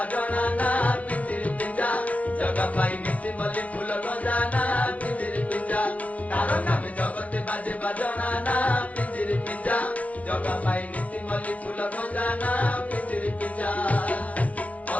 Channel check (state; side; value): late; right; 0.067 ms